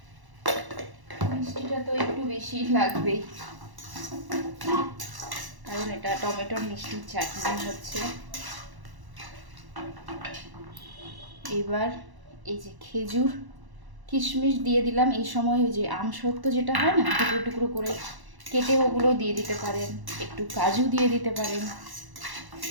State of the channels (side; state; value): left; late; 1.0 ms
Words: মিষ্টিটা তো একটু বেশি লাগবেই, কারণ এটা টমেটোর মিষ্টির চাটনি হচ্ছে। এবার এই যে খেজুর কিশমিশ দিয়ে দিলাম। এই সময় ওই যে আমসত্ত্ব যেটা হয় না, টুকরো টুকরো করে কেটে ওগুলো দিয়ে দিতে পারেন, একটু কাজু দিয়ে দিতে পারেন,